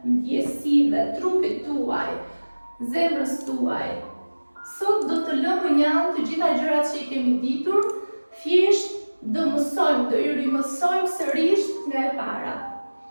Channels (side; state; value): both; inverted; correlation -1.00